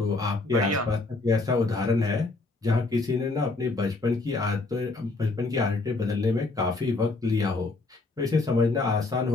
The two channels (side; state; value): right; quieter; 3.4 dB